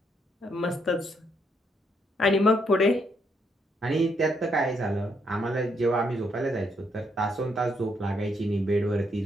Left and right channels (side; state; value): both; normal; correlation 0.74